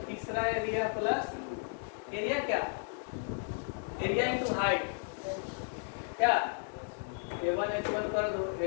तीसरा एरिया प्लस एरिया क्या? एरिया इंटू हाइट क्या? A1 H1 कर दो,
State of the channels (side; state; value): right; silent; 55 dB below the other